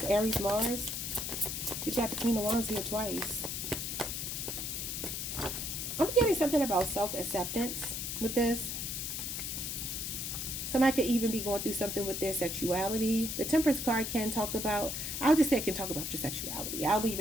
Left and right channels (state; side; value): noise; left; hiss, 3 dB below the sound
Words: Aries, Mars. You got the Queen of Wands here twice. I'm getting something about self-acceptance with this. Somebody could even be going through something with their sexuality. The Temperance card can talk about, I'll just say it can talk about your sexuality. I'll leave